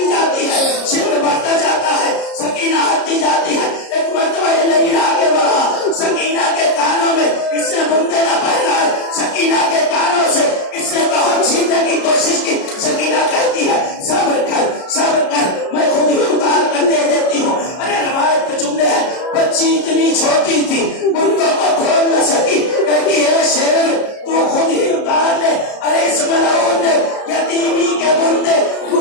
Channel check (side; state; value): right; late; 33 ms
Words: जाती है, शिमर बढ़ता जाता है, सकीना हटती जाती है। एक मरतबा ये नहीं आगे बढ़ा, सकीना के कानों में इसने बुंदे न पहनाए, सकीना के कानों से इसने बहुत छीनने की कोशिश की। सकीना कहती है सब्र कर, मैं खुद ही उतार कर दे देती हूँ। अरे रवायत के जुमले हैं, बच्ची इतनी छोटी थी बुंदों को खोल न सकी, कहती है शेर तू खुद ही उतार ले। अरे इस मलऊन ने यतीमी के बुंदे